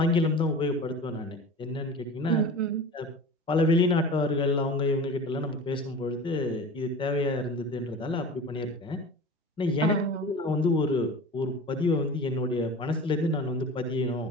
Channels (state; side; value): normal; both; correlation 0.36